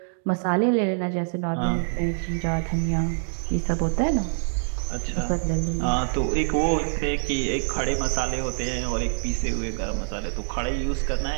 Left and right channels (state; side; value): silent; left; digital silence